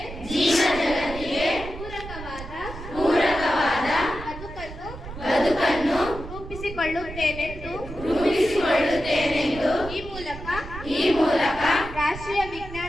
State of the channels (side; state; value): right; noise; rumble, 12 dB below the sound